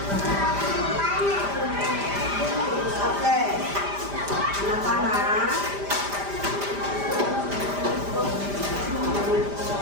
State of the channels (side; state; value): left; late; 5.0 ms